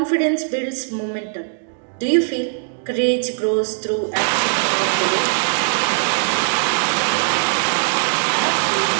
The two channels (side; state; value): left; silent; digital silence